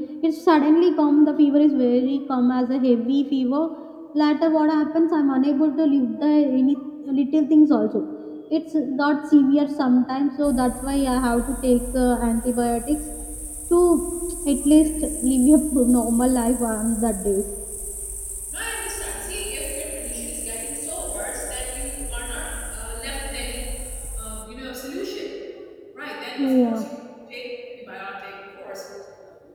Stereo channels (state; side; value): identical; both; correlation 1.00